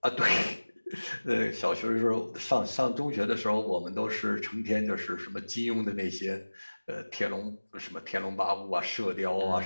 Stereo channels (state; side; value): inverted; both; correlation -1.00